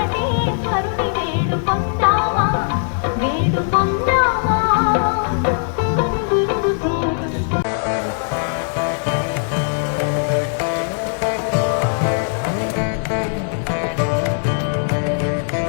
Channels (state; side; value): silent; right; digital silence